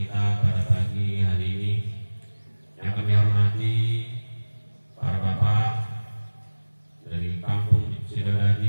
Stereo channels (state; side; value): inverted; both; correlation -1.00